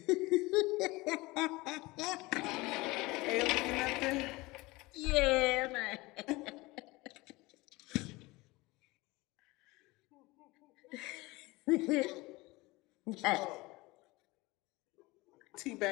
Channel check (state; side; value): quieter; right; 22.1 dB